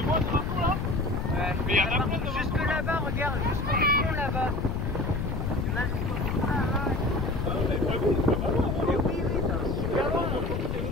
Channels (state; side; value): noise; left; rumble, 1 dB below the sound